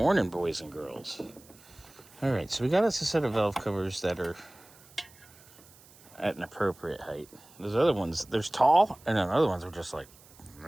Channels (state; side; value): noise; right; hiss, 25 dB below the sound